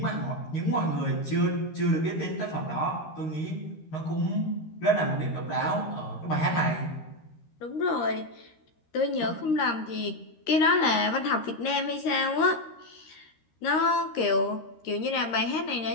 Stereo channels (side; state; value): right; late; 13 ms